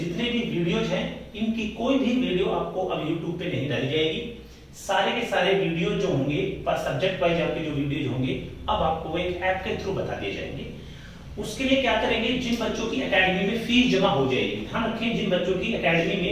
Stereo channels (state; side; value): identical; both; correlation 1.00